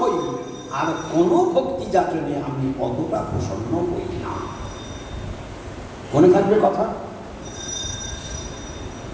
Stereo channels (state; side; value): identical; both; correlation 1.00